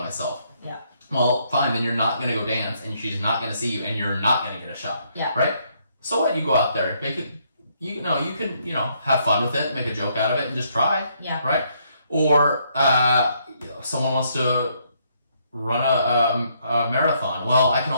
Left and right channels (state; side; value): inverted; both; correlation -0.71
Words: myself. Yeah. Well, fine. Then you're not going to go dance and she's not going to see you and you're not going to get a shot. Yeah. Right? So what? You go out there, make it, you can, have fun with it, make a joke out of it and just try. Yeah. Right? Or someone wants to run a marathon. Well, I can